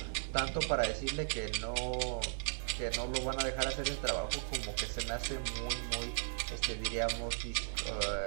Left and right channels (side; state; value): left; silent; 53 dB below the other